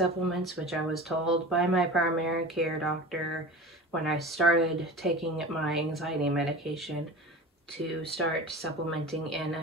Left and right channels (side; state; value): both; normal; correlation 0.34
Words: which I was told by my primary care doctor when I started taking my anxiety medication to start supplementing in